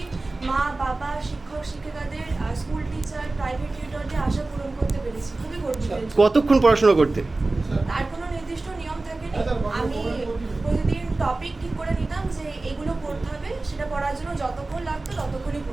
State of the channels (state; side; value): quieter; left; 3.2 dB